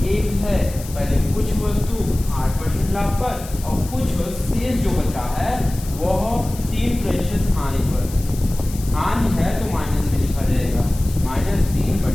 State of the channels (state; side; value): noise; left; hiss, 15 dB below the sound